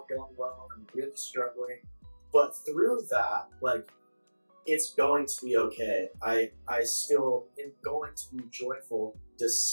going well. I'm really struggling. But through that, like, it's going to be okay. I still am going to be joyful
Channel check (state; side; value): inverted; both; correlation -1.00